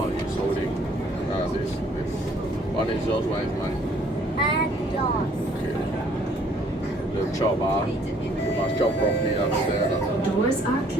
He's holding this. One is yours, one is mine. And yours. Okay. The job, you must job properly upstairs. Doors are 環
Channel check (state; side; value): normal; both; correlation 0.60